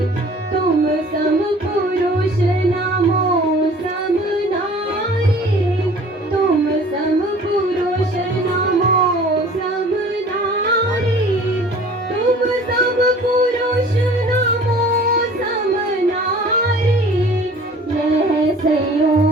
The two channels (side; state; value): both; normal; correlation 0.48